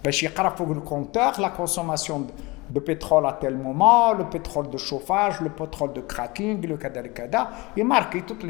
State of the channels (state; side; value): quieter; right; 24.1 dB